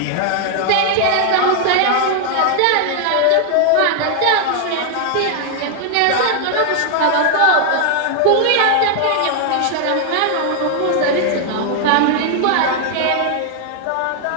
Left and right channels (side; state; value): both; different; correlation 0.00